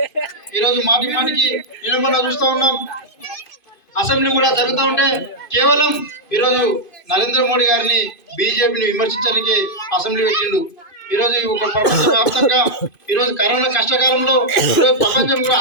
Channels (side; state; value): right; late; 2.5 ms